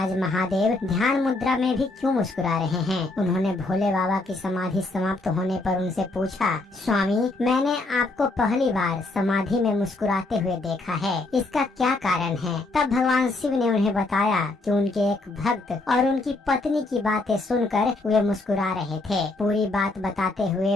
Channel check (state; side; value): quieter; right; 3.0 dB